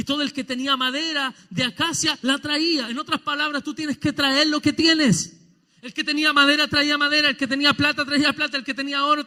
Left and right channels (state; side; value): identical; both; correlation 1.00